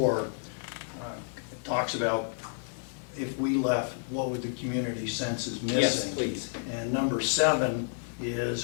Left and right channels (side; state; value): right; silent; 58 dB below the other